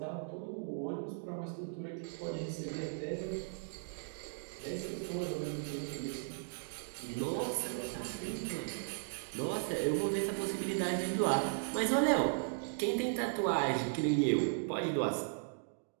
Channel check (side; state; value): left; silent; digital silence